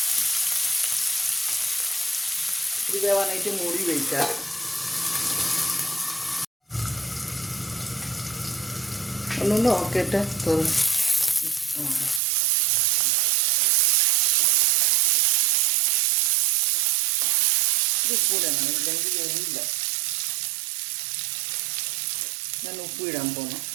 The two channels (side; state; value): left; drops out; at 12.2 s